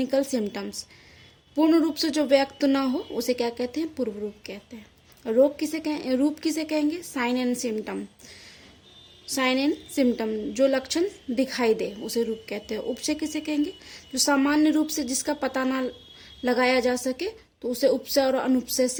सिम्टम्स, पूर्ण रूप से जो व्यक्त ना हो उसे क्या कहते हैं? पूर्व रूप कहते हैं। रोग किसे कहें, रूप किसे कहेंगे? Sign and symptom. Sign and symptom जो लक्षण दिखाई दे उसे रूप कहते हैं। उपसय किसे कहेंगे? जो सामान्य रूप से जिसका पता ना लगाया जा सके तो उसे उपसय और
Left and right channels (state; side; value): identical; both; correlation 1.00